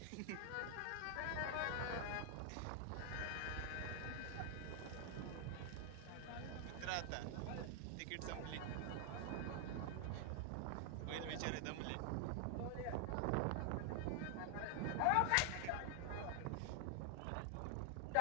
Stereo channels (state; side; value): different; both; correlation 0.00